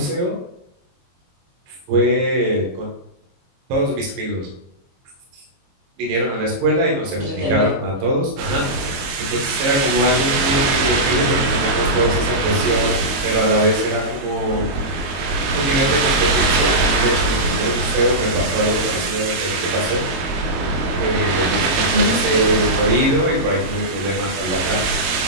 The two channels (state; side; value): late; left; 22 ms